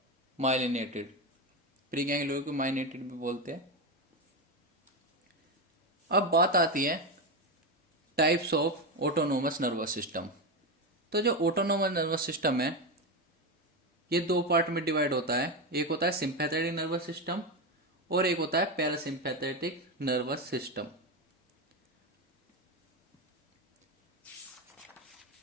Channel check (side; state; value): both; normal; correlation 0.14